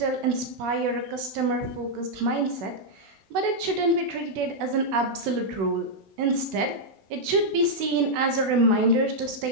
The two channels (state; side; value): late; left; 16 ms